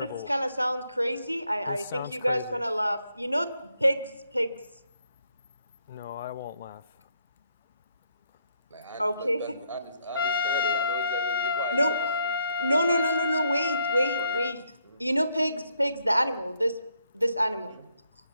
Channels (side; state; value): both; inverted; correlation -0.75